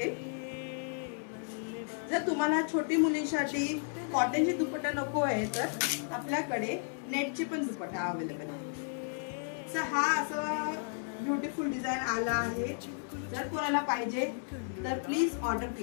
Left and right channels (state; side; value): silent; right; digital silence